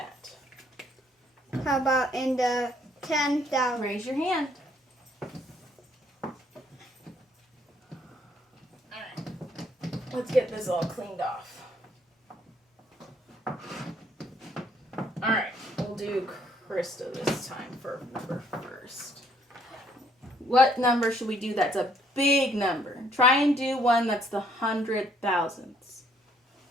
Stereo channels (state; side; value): normal; both; correlation 0.66